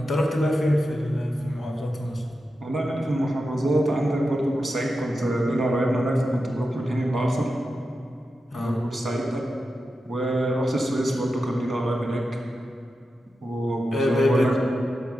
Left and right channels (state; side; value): normal; both; correlation 0.90